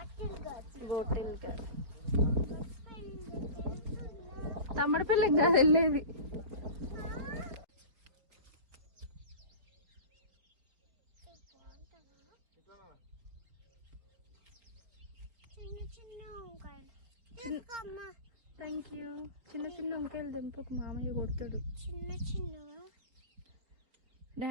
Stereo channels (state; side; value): late; left; 4.3 ms